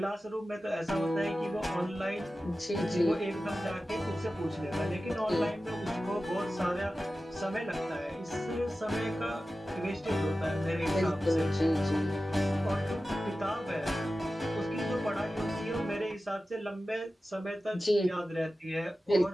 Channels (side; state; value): both; normal; correlation 0.94